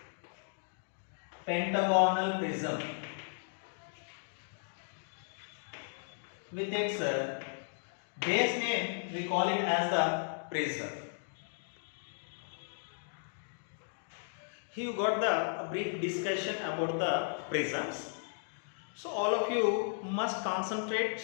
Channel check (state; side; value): silent; right; digital silence